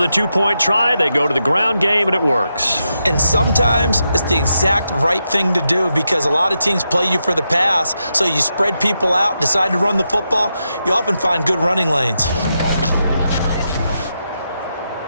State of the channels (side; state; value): both; inverted; correlation -0.85